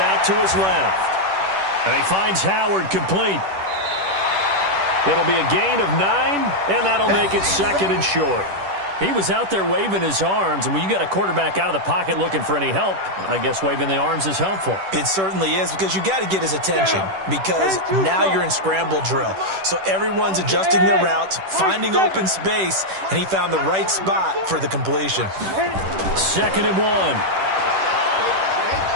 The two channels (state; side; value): late; left; 10 ms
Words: to his left. And he finds Howard complete. It'll be a gain of 9, and that'll make it 2nd and short. He was out there waving his arms, and when you got a quarterback out of the pocket looking for any help, I guess waving the arms is helpful. It certainly is, because you got to get his attention, because now you're in scramble drill. So everyone's adjusting their routes, finding open space, and he found the right spot for the completion. 2nd and 1.